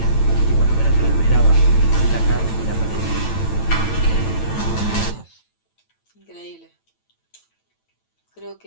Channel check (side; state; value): right; late; 9.1 ms